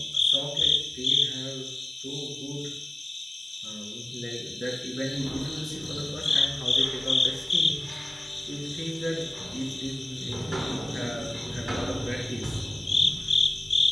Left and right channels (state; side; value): normal; both; correlation 0.97